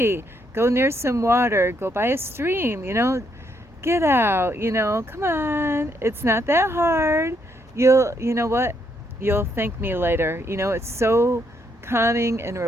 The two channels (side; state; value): both; normal; correlation 0.74